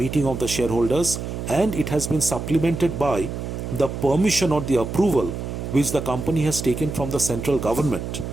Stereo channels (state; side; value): noise; right; hum, 6 dB below the sound